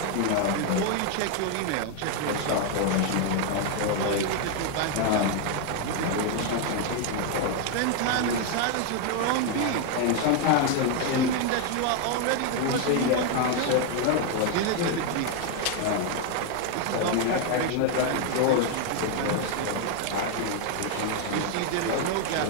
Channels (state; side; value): different; both; correlation 0.01